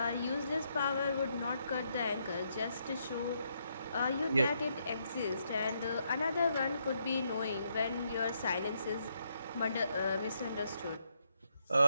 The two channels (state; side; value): inverted; both; correlation -0.78